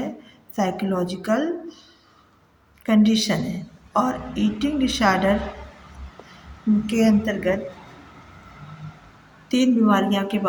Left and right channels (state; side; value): identical; both; correlation 1.00